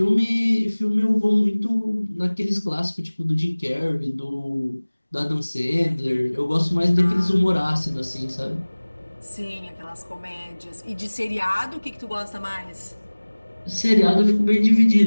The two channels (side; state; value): both; inverted; correlation -1.00